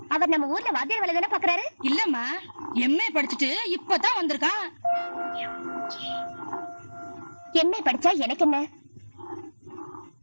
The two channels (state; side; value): inverted; both; correlation -1.00